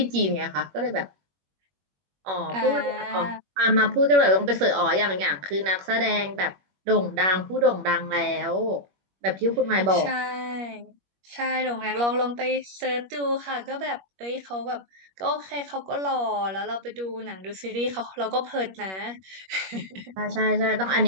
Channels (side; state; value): left; late; 21 ms